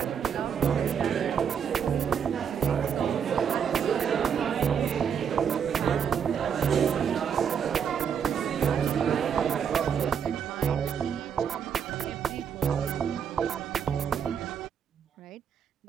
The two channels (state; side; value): quieter; left; 7.6 dB